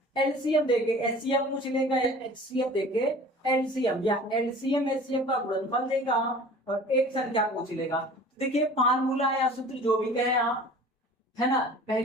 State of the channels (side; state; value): both; normal; correlation 0.44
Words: एलसीएम देके एचसीएफ पूछ लेगा, एचसीएफ देके एलसीएम या एलसीएम एचसीएफ का गुणनफल देगा और एक संख्या पूछ लेगा। देखिए फार्मूला या सूत्र जो भी कहे आप, है ना,